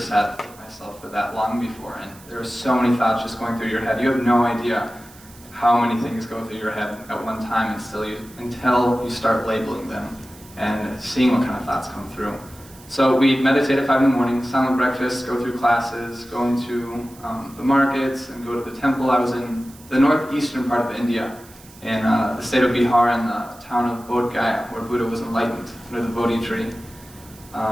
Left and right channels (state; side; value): noise; right; hiss, 23 dB below the sound